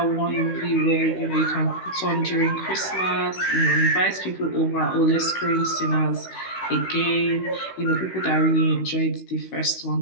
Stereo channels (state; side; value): late; right; 16 ms